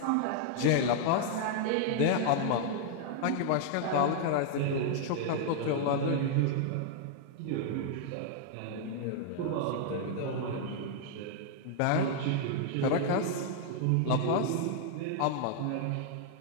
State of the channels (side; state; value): both; different; correlation -0.01